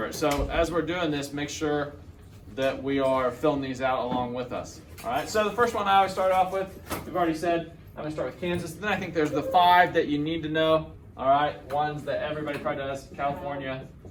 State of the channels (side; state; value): both; identical; correlation 1.00